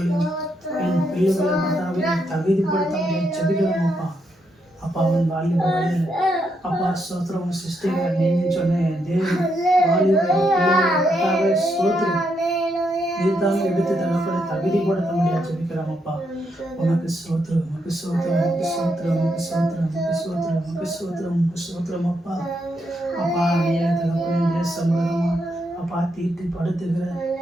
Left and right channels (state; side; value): normal; both; correlation 0.79